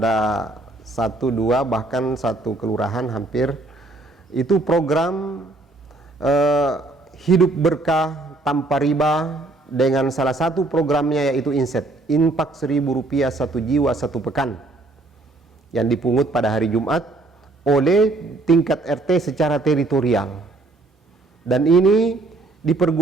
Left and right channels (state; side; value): quieter; left; 3.0 dB